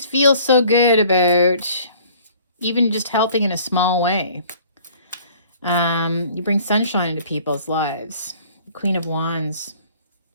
feel so good about even just helping in a small way. You bring sunshine into people's lives. Queen of Wands,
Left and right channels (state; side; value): inverted; both; correlation -0.53